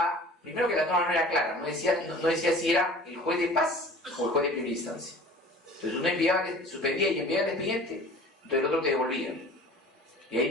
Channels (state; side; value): normal; both; correlation 0.44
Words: primero que la norma no era clara, no decía si era el juez de paz o el juez de primera instancia. Entonces uno suspendía y enviaba el expediente, entonces el otro te devolvía. Y ahí